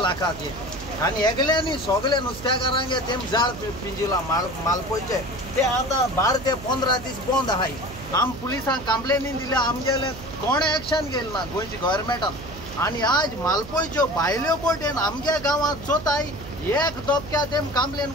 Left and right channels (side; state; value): right; noise; hum, 14 dB below the sound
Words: लाखाचे आनी एकल्यांनी सगळे नुस्तेकारांगे तेम जाळ पिंजिला मालपोयचे ते आतां 12 ते 15 दीस बंद आहाय. आम पुलिसांक कंप्लेनी दिल्या आमगेले कोणे एक्शन घेयलें ना गोंयच्या गव्हर्मेंटान. आनी आज मालपोयच्यो भायल्यो बोटेन आमगे गांवांत चोताय एक दोपक्या तेम कंप्लेन